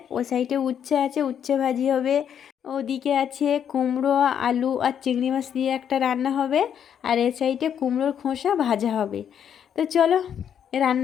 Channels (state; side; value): quieter; right; 8.7 dB